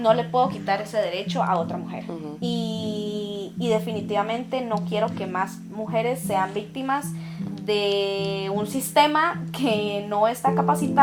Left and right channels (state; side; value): identical; both; correlation 1.00